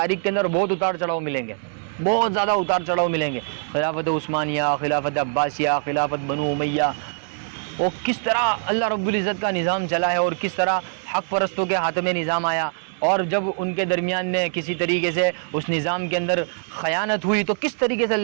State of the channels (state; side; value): silent; left; 63 dB below the other